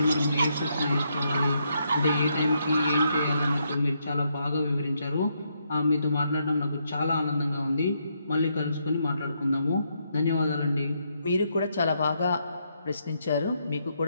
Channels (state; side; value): inverted; both; correlation -0.77